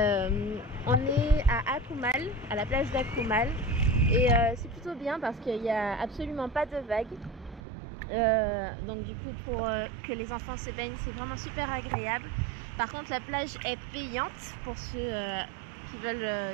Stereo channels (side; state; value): left; drops out; at 7.6 s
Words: On est à Akumal, à la plage d'Akumal, et c'est plutôt bien parce qu'il n'y a absolument pas de vagues. Donc du coup pour que les enfants se baignent, c'est vraiment super agréable. Par contre la plage est payante pour ceux qui